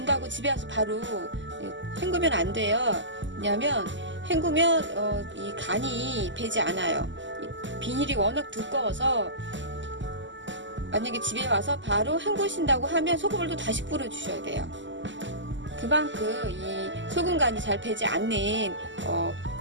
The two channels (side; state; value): left; late; 0.54 ms